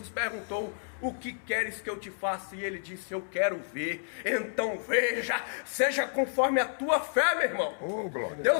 perguntou, o que queres que eu te faça? E ele disse, eu quero ver. Então veja, seja conforme a tua fé, meu irmão.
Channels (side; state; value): right; silent; digital silence